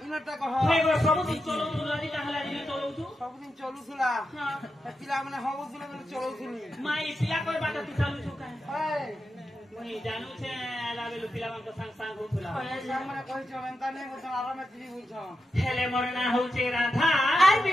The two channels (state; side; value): normal; both; correlation 0.88